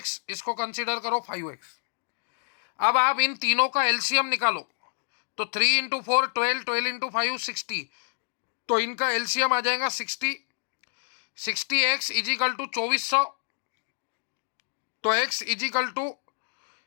इसको कंसीडर करो 5x। अब आप इन तीनों का एलसीएम निकालो, तो 3 इंटू 4 12, 12 इंटू 5 60, तो इनका एलसीएम आ जाएगा 60। 60x इज इक्वल टू 2400, तो x इज इक्वल टू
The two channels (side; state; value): right; silent; digital silence